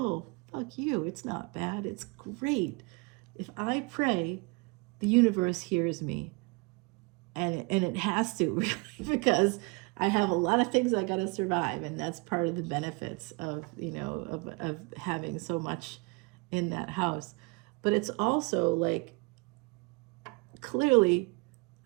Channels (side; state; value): left; quieter; 29.1 dB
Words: fuck you. It's not bad. It's great. If I pray, the universe hears me. And it has to, really, because I have a lot of things I got to survive, and that's part of the benefits of, of having so much in that house. But it's also like, clearly,